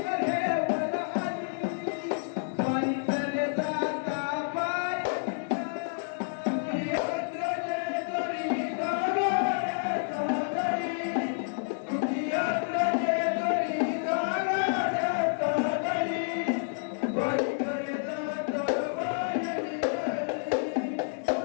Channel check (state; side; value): silent; right; 58 dB below the other